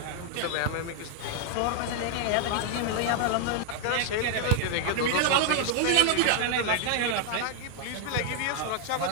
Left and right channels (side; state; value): both; different; correlation 0.00